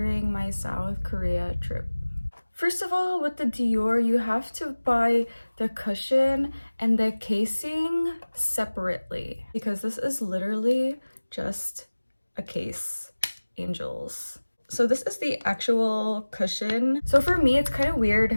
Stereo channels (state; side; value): inverted; both; correlation -1.00